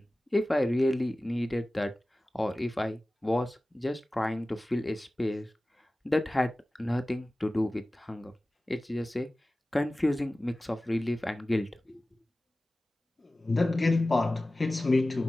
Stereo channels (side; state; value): both; normal; correlation 0.97